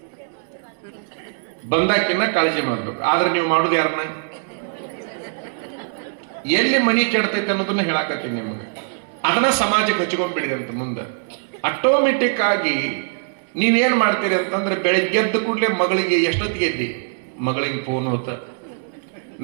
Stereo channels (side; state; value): left; silent; 65 dB below the other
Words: ಬಂದಾಕಿನ ಕಾಳಜಿ ಮಾಡ್ಬೇಕು. ಆದ್ರೆ ನೀವು ಮಾಡೋದು ಯಾರನ್ನ? ಎಲ್ಲಿ ಮನಿ ಕೆಡ್ತೈತೆ ಅನ್ನೋದನ್ನ ಹೇಳಾಕತ್ತೀನಿ ನಿಮಗೆ. ಅದನ್ನ ಸಮಾಜಕ್ಕೆ ಹಚ್ಕೊಂಡ್ಬಿಡಿರಿ ಅಂತ ಮುಂದೆ. ಆಟೋಮೆಟಿಕ್ ಆಗಿ ನೀವೇನ್ ಮಾಡ್ತೀರಿ ಅಂತಂದ್ರೆ, ಬೆಳಿಗ್ಗೆ ಎದ್ದ ಕೂಡಲೇ ಮಗಳಿಗೆ ಎಷ್ಟೊತ್ತಿಗೆ ಎದ್ದಿ? ಮಗಳಿಗೆ ಫೋನ್ ಹೋತ,